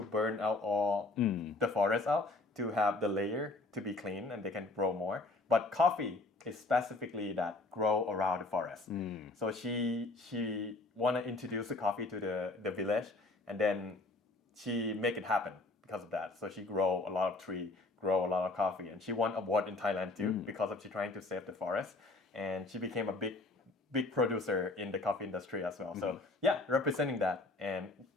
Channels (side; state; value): right; quieter; 3.1 dB